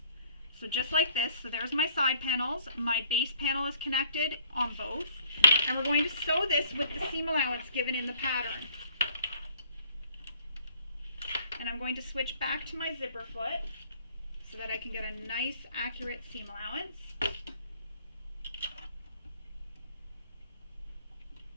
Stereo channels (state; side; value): inverted; both; correlation -0.58